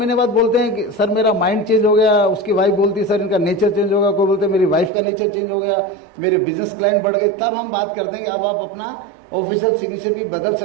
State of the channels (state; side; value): drops out; left; at 4.9 s